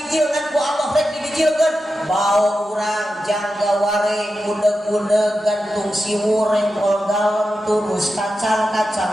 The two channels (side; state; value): both; normal; correlation 0.90